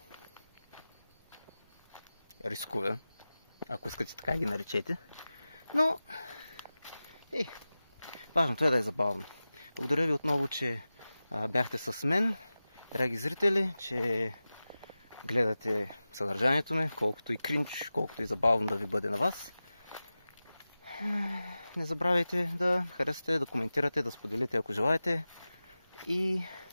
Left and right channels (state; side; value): inverted; both; correlation -0.96